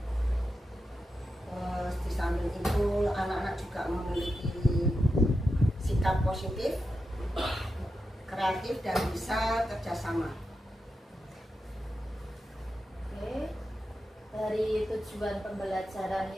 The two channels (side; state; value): both; normal; correlation 0.88